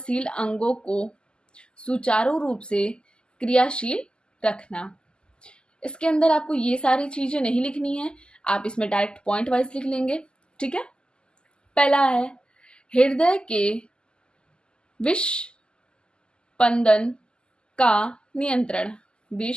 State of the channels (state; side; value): late; right; 0.048 ms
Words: अंगों को सुचारू रूप से क्रियाशील रखना। इसके अंदर आपको ये सारी चीजें नहीं लिखनी है, आप इसमें डायरेक्ट पॉइंट वाइज लिख लेंगे। ठीक है, पहला है हृदय के विस्पंदन का नियंत्रण,